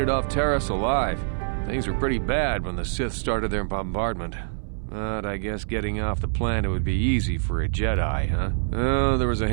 off Terrace alive. Things were pretty bad when the Sith started their bombardment. But I guess getting off the planet would be easy for a Jedi, huh? Oh, there was a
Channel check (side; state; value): left; silent; 62 dB below the other